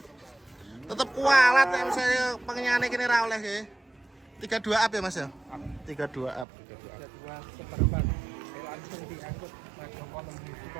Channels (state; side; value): drops out; left; at 6.5 s